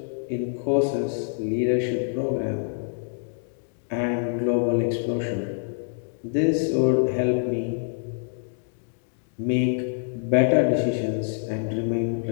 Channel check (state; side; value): silent; right; digital silence